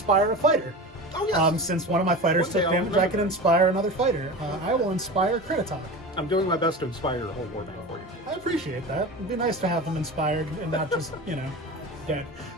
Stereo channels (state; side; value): normal; both; correlation 0.30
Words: a fighter. Oh, yes. Since one of my fighters One day took I'll damage, I remember can that. inspire another fighter. I will inspire Crititalk. I'm doing my best to inspire a whole war battle for you. I appreciate that. It'd be nice to have them inspired and not just, dead.